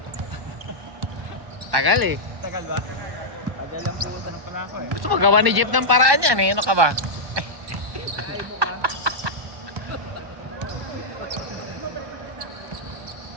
Tagal eh. Tagal ba? Tagal lang pumunta na pala ako eh. Gusto magawa ni Jeep ng paraan yan eh. Ano ka ba?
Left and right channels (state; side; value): late; left; 1.1 ms